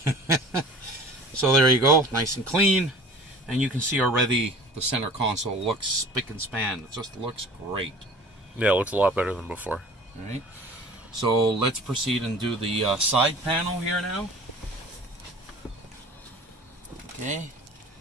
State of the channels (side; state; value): both; normal; correlation 0.45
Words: So there you go, nice and clean. And you can see already the center console looks spick and span. It just looks great. Yeah, it looks a lot better than before. All right, so let's proceed and do the side panel here now. Okay,